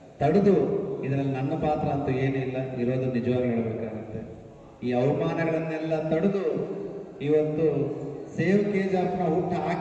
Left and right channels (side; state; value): both; identical; correlation 1.00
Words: ತಡೆದು, ಇದರಲ್ಲಿ ನನ್ನ ಪಾತ್ರ ಅಂತೂ ಏನಿಲ್ಲ, ಇರೋದು ನಿಜವಾಗಿ ಹೇಳಬೇಕಾಗುತ್ತೆ. ಈ ಅವಮಾನಗಳನ್ನೆಲ್ಲ ತಡೆದು ಇವತ್ತು ಸೇವ್ KGFನ ಹುಟ್ಟು